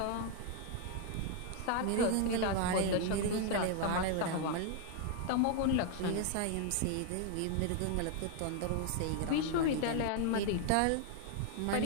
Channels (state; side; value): different; both; correlation 0.00